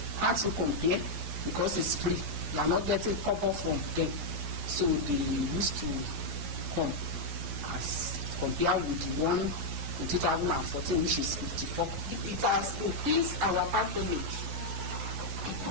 Can't you compare? Because it's free. We are not getting cover from them. So they used to come as compared with the one in 2014, which is 54. It has increased our patronage.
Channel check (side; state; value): left; late; 12 ms